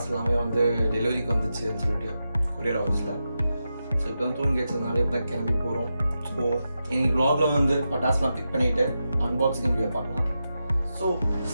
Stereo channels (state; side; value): inverted; both; correlation -0.89